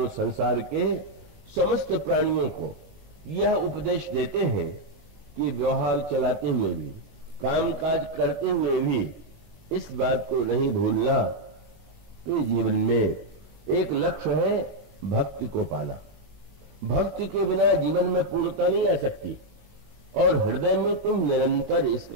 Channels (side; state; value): left; late; 19 ms